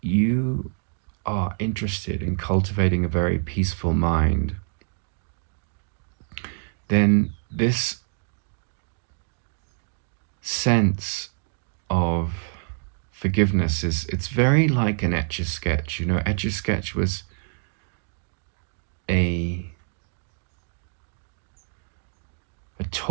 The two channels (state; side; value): silent; left; 56 dB below the other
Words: you are interested in cultivating a very peaceful mind, then this sense of forgiveness it's very like an Etch-a-Sketch. Etch-a-Sketch was a